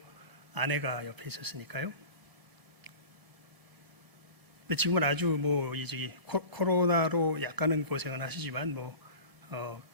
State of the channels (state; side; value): late; left; 1.7 ms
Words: 아내가 옆에 있었으니까요. 근데 지금은 아주 코로나로 약간은 고생은 하시지만